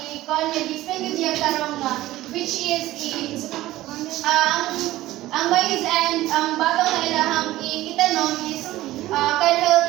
ko niya tarong nga, which is ang maize and ang batong na ilahang itanom is can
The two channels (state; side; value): quieter; left; 16.1 dB